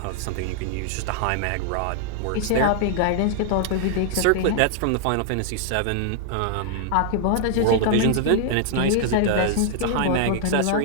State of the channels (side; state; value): both; different; correlation 0.00